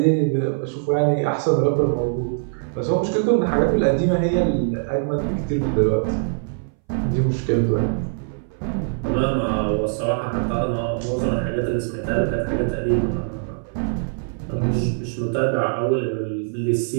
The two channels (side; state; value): left; silent; 62 dB below the other